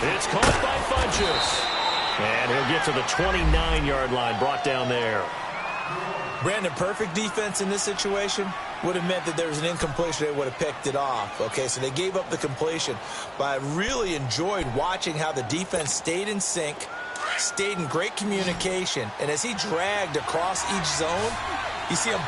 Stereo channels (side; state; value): both; identical; correlation 1.00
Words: It's caught by Funchess. And he'll get to the 29-yard line, brought down there. Brandon, perfect defense in this situation would have meant that there was an incompletion. They would have picked it off. Okay, so they gave up the completion. But I really enjoyed watching how the defense stayed in sync, stayed in great communication. And as he dragged across each zone, you see him